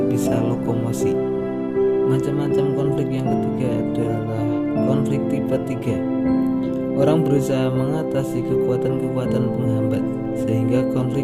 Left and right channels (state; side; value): identical; both; correlation 1.00